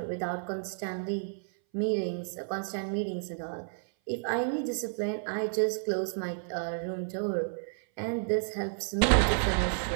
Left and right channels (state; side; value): silent; left; 57 dB below the other